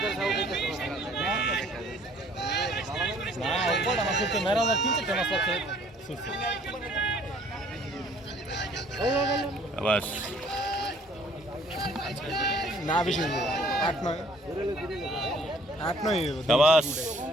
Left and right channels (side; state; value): both; normal; correlation 0.57